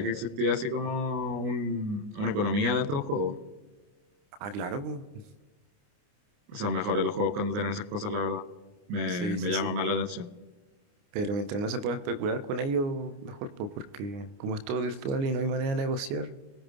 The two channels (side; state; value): left; late; 29 ms